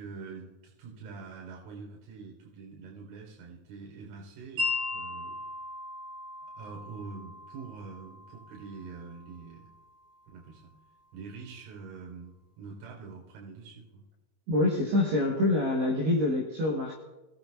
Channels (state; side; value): late; left; 19 ms